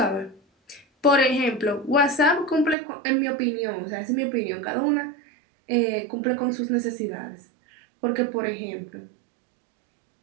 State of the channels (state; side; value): drops out; left; at 2.8 s